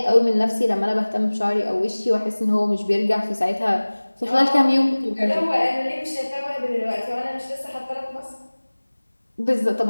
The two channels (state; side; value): inverted; both; correlation -1.00